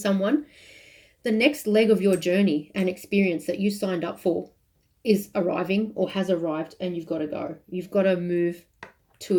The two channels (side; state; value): both; identical; correlation 1.00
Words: The next leg of your journey and experience that you signed up for is arriving or has arrived, and you've got to go. You've got to move